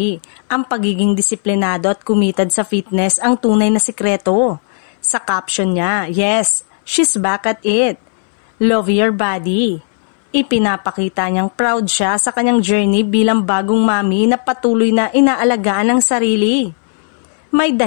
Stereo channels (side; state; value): right; silent; 65 dB below the other